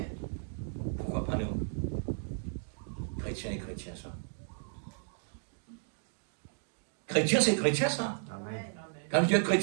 Pourquoi pas nous? Chrétien et chrétien, ça. Chrétien, c'est chrétien, ça. Amen. Quand Dieu est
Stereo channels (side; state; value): left; silent; digital silence